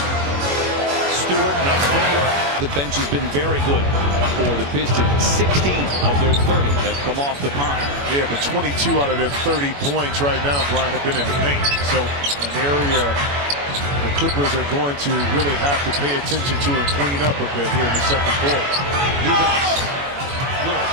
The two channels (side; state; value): left; late; 21 ms